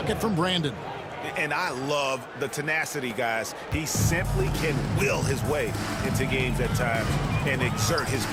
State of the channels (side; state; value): both; identical; correlation 1.00